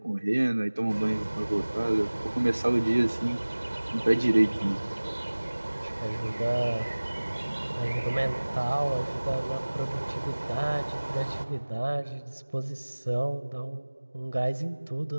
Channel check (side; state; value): both; inverted; correlation -1.00